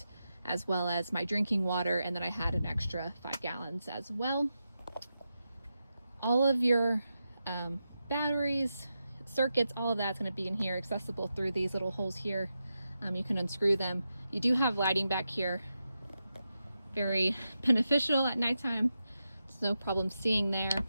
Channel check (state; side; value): inverted; both; correlation -0.88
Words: as well as my drinking water. And then I had an extra 5 gallons as well. All of your batteries, circuits, all of that's going to be in here, accessible through these little holes here. You can unscrew them. You do have lighting back here. Very beneficial at nighttime. There's no problem seeing there.